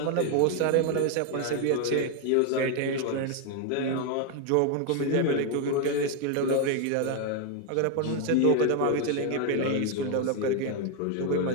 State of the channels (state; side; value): different; both; correlation 0.01